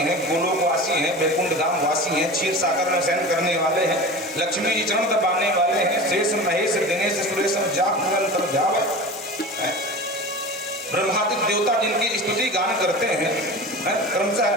गोलोक वासी हैं, वैकुंठ धाम वासी हैं, क्षीर सागर में शयन करने वाले हैं, लक्ष्मी जी चरण दबाने वाले हैं, शेष महेश दिनेश सुरेश जाप निरंतर जाप। ब्रह्मादि देवता जिनकी स्तुति गान करते हैं, क्रमशः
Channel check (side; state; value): both; normal; correlation 0.32